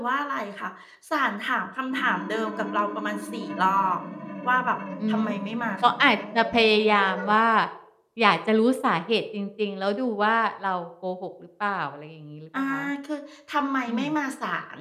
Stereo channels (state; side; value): identical; both; correlation 1.00